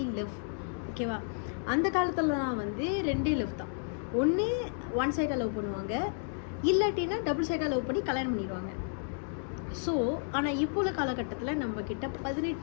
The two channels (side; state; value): right; silent; digital silence